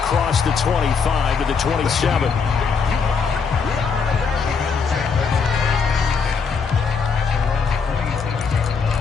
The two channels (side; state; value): right; quieter; 5.5 dB